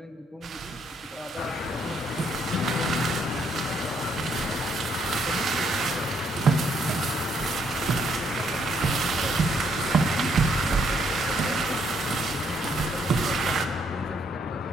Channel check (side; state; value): both; normal; correlation 0.71